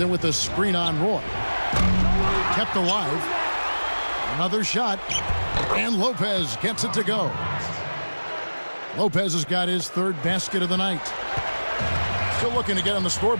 with the screen on Roy. Kept alive. Another shot. And Lopez gets it to go. Lopez has got his 3rd basket of the night. Still looking to get on the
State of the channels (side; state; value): both; inverted; correlation -1.00